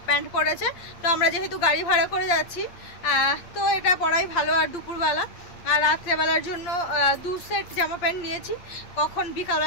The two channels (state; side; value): late; right; 8.5 ms